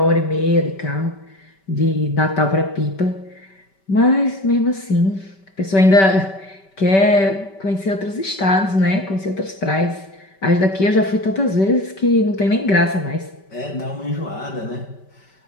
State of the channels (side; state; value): right; late; 5.2 ms